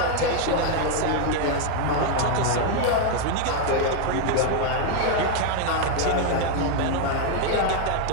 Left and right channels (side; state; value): both; different; correlation 0.01